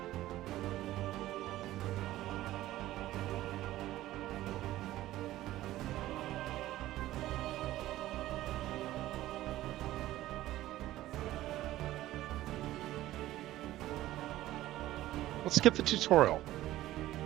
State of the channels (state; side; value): quieter; left; 15.2 dB